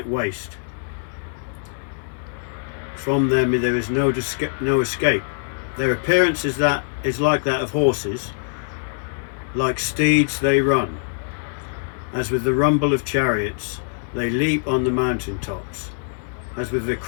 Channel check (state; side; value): silent; right; 63 dB below the other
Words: waste. From them there is no escape. Their appearance is like that of horses, like steeds they run. As with the rumble of chariots, they leap on the mountain tops, as with the